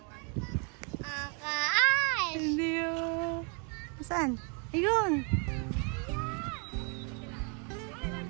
Ang kaas! Hindi oh. Saan? Ayun.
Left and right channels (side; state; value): left; quieter; 36.6 dB